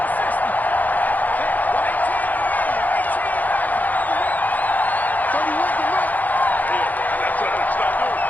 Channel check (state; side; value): late; right; 0.082 ms